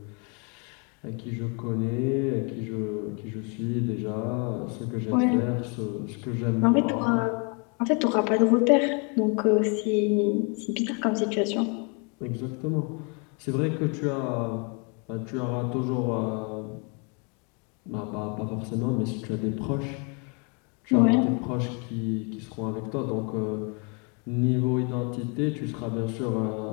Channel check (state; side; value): quieter; right; 35.1 dB